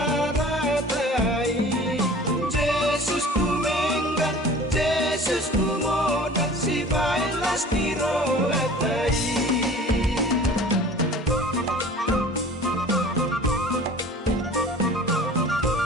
ratai Yesus ku menggan Yesus ku modak si bailas tiro atai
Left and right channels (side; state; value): both; normal; correlation 0.44